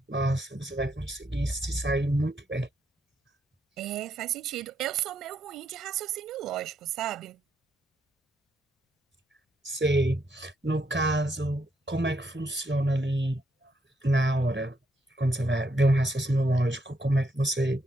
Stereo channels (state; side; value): normal; both; correlation 0.77